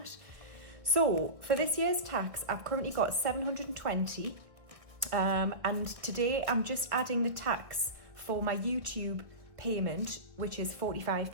So for this year's tax, I've currently got 720, and today I'm just adding the tax for my YouTube payment, which is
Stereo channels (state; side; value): late; left; 1.7 ms